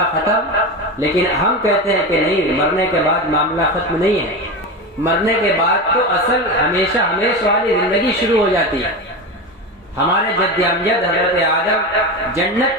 ختم، لیکن ہم کہتے ہیں کہ نہیں، مرنے کے بعد معاملہ ختم نہیں ہے۔ مرنے کے بعد تو اصل ہمیشہ ہمیش والی زندگی شروع ہو جاتی ہے۔ ہمارے جد امجد حضرت آدم جنت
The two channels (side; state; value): both; normal; correlation 0.22